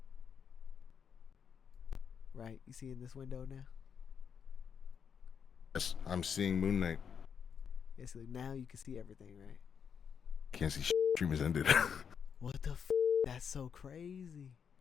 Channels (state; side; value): quieter; right; 7.2 dB